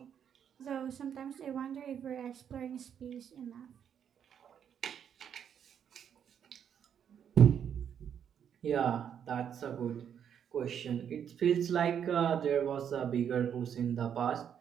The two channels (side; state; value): left; quieter; 8.5 dB